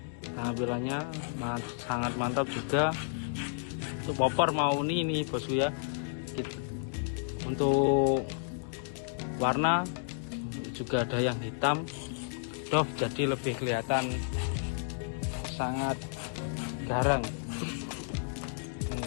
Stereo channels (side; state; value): right; silent; digital silence